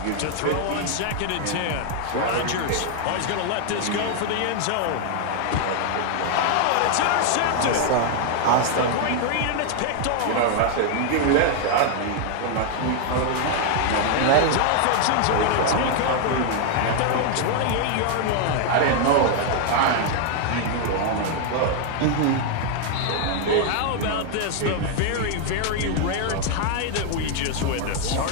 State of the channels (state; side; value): different; both; correlation 0.00